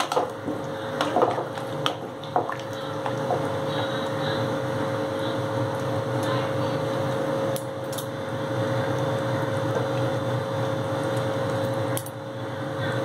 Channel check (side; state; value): both; identical; correlation 1.00